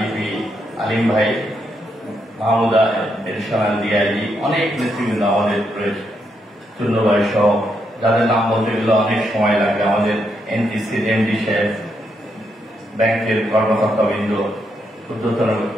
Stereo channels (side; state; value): both; normal; correlation 0.79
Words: আলিম ভাই, মাহমুদা এডিশনাল ডিআইজি, অনেক নেতৃবৃন্দ আমাদের রয়েছে, চুন্নভাই সহ, যাদের নাম বলতে গেলে অনেক সময় লাগে, আমাদের এনটিসি এমডি সাহেব, ব্যাংকের কর্মকর্তাবৃন্দ, উচ্চতর